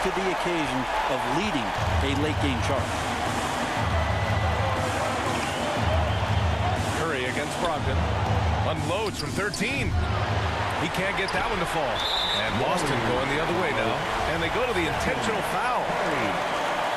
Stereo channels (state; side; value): identical; both; correlation 1.00